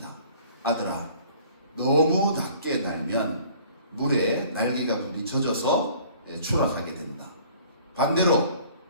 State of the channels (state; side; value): inverted; both; correlation -0.53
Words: 아들아, 너무 낮게 날면 물에 날개가 부딪혀져서 추락하게 된다. 반대로